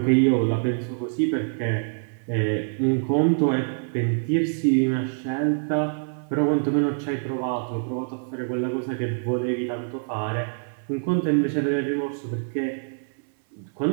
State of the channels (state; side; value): silent; left; 60 dB below the other